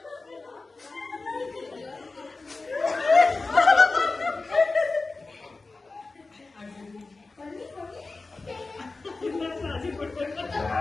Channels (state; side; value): quieter; right; 3.6 dB